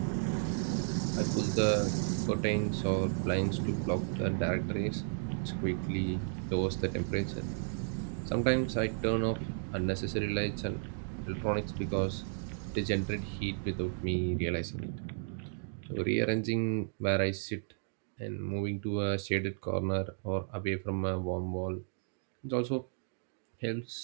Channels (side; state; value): left; silent; digital silence